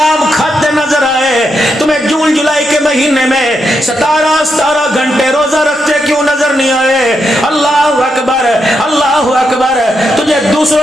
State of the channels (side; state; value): both; normal; correlation 0.83